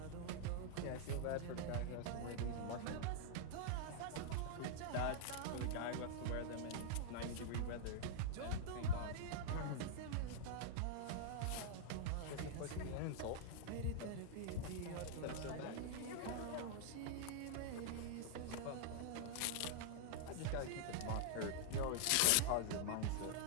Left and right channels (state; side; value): different; both; correlation -0.01